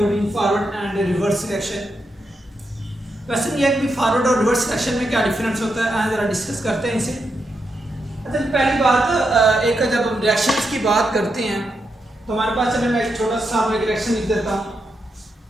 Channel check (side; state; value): both; normal; correlation 0.84